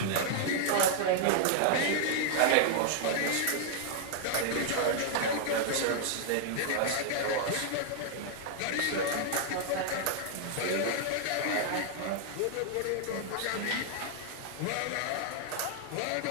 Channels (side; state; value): both; different; correlation 0.00